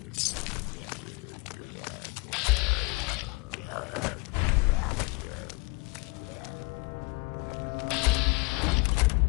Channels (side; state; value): right; quieter; 28.1 dB